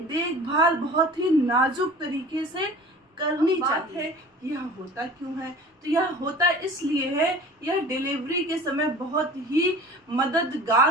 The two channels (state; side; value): normal; both; correlation 0.41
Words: बहुत ही नाजुक तरीके से करनी चाहिए। यह होता क्यों है? तो यह होता इसलिए है, यह डिलीवरी के समय बहुत ही